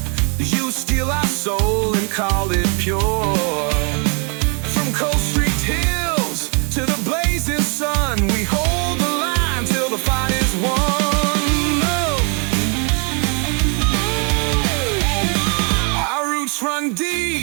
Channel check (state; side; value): quieter; left; 37.7 dB